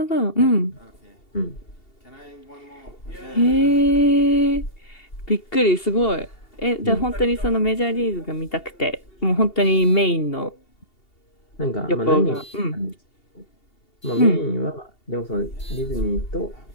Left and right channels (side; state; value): right; late; 2.8 ms